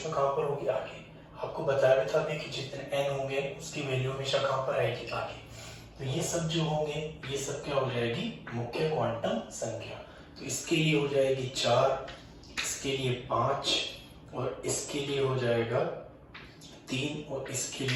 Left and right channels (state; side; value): identical; both; correlation 1.00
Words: में कहां पर होगी, आगे। आपको बताया भी था अभी कि जितने n होंगे उसकी वैल्यू हमेशा कहां पर आएगी, आगे। तो ये सब जो होंगे ये सब क्या हो जाएगी, मुख्य क्वांटम संख्या। तो इसके लिए हो जाएगी 4, इसके लिए 5, और इसके लिए हो जाएगा 3, और इसके